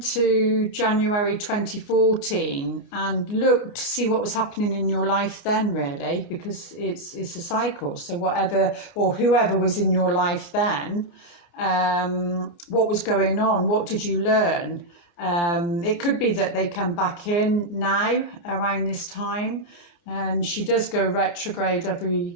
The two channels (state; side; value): late; right; 29 ms